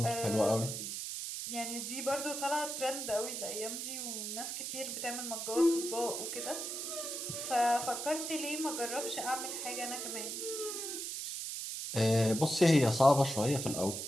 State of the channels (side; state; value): right; noise; hiss, 4 dB below the sound